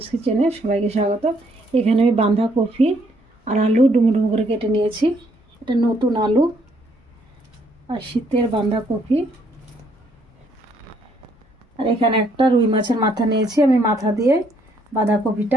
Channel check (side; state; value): both; normal; correlation 0.69